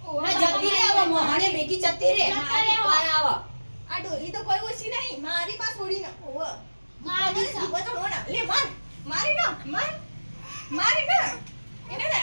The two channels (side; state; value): both; inverted; correlation -1.00